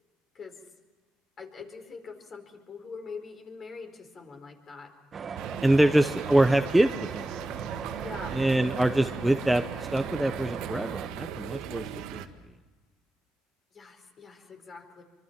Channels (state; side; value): normal; both; correlation 0.94